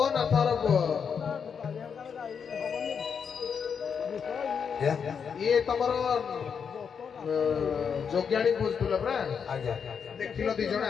ନାଥର ପୁଅ ଇଏ ତମର ଯୋଗ୍ୟାଣୀ ବୁଝୁଥିଲ ପରା ଆଜ୍ଞା ଦେଖିଲ ଦି ଜଣ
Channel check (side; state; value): right; quieter; 6.7 dB